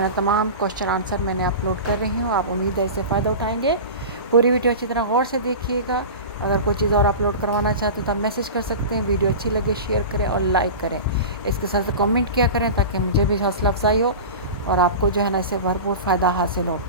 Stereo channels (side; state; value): both; inverted; correlation -0.30